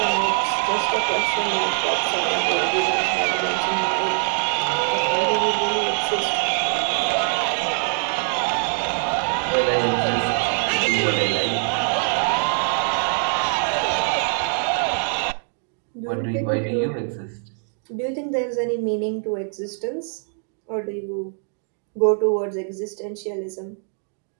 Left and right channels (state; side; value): silent; left; 57 dB below the other